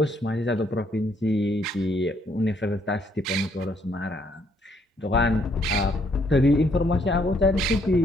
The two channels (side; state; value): both; normal; correlation 0.69